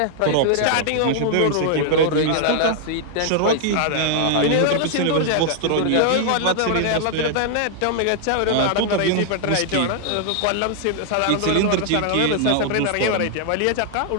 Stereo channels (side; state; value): both; different; correlation -0.01